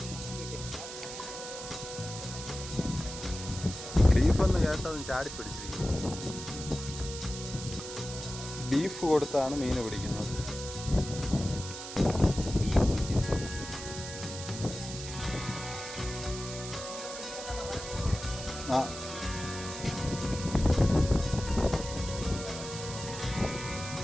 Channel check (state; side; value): noise; right; hiss, 9 dB below the sound